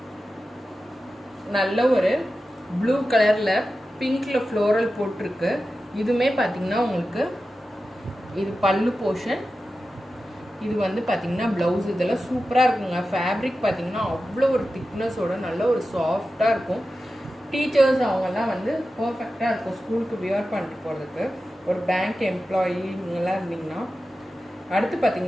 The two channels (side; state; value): both; normal; correlation 0.93